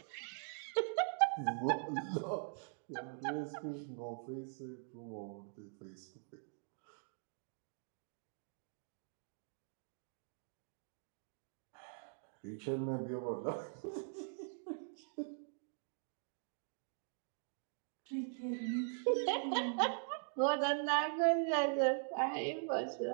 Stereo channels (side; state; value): left; silent; digital silence